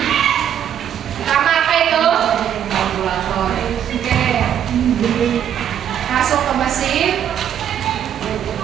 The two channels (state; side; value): quieter; left; 9.7 dB